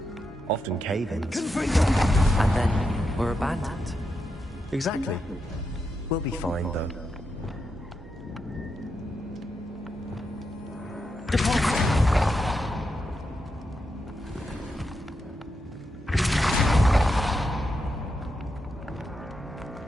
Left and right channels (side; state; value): both; normal; correlation 0.85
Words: often cave-ins. And then were abandoned. Exactly. We'll be fine, though.